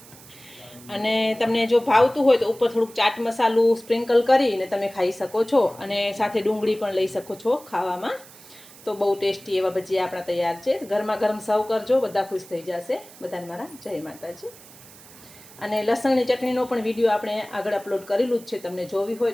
અને તમને જો ભાવતું હોય તો ઉપર થોડુંક ચાટ મસાલું સ્પ્રિંકલ કરીને તમે ખાઈ શકો છો. અને સાથે ડુંગળી પણ લઈ શકો છો ખાવામાં. તો બહુ ટેસ્ટી એવા ભજીયા આપણા તૈયાર છે. ગરમા ગરમ સર્વ કરજો, બધા ખુશ થઈ જશે. બધાને મારા જય માતાજી. અને લસણની ચટણીનો પણ વિડીયો આપણે આગળ અપલોડ કરેલું જ છે. તમને જોવી હોય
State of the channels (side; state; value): right; noise; hiss, 21 dB below the sound